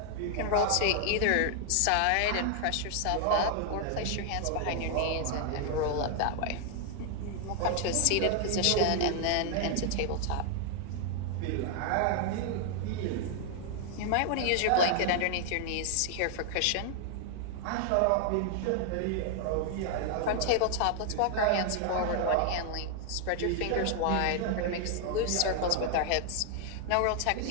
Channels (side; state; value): both; different; correlation 0.00